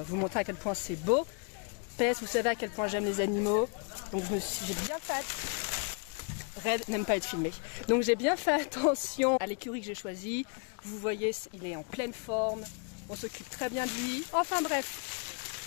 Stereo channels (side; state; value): right; quieter; 37.9 dB